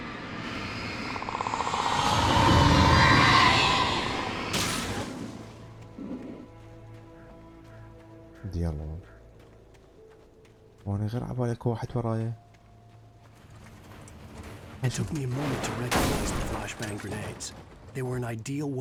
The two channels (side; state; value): both; identical; correlation 1.00